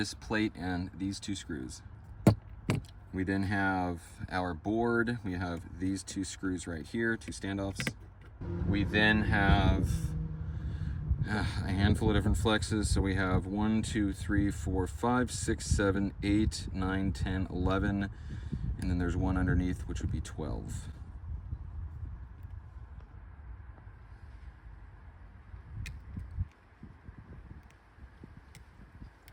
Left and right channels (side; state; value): both; identical; correlation 1.00